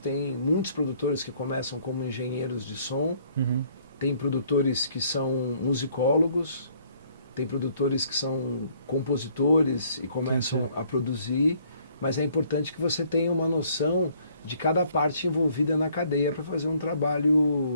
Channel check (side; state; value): both; inverted; correlation -0.63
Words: muitos produtores que começam como engenheiros de som, tem produtores que são musicólogos, tem produtores que são compositores e começam a produzir, mas é importante que você tenha uma noção de cada parte envolvida na cadeia para fazer um